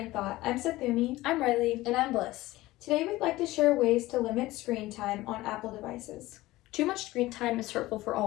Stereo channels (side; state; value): right; quieter; 18.0 dB